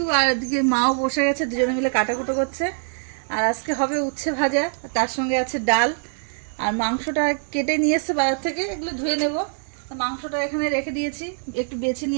আর এদিকে মাও বসে গেছে, দুজনে মিলে কাটাকুটো করছে। আর আজকে হবে উচ্ছে ভাজা, তার সঙ্গে আছে ডাল। আর মাংসটা কেটে নিয়ে এসছে বাজার থেকে, এগুলো ধুয়ে নেব। মাংসটা এখানে রেখে দিয়েছি, একটু বেছে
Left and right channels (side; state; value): left; silent; digital silence